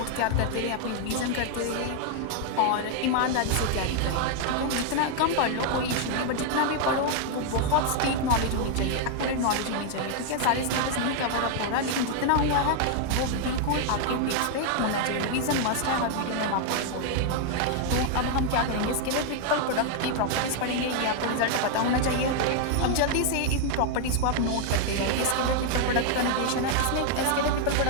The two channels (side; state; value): both; different; correlation 0.00